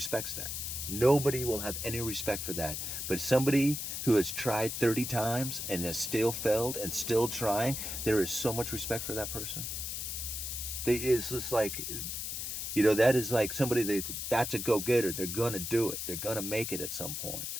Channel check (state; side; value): noise; left; hiss, 4 dB below the sound